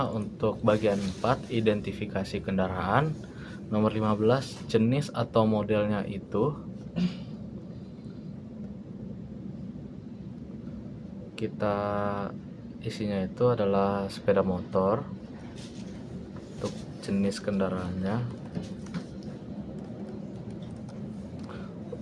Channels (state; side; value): identical; both; correlation 1.00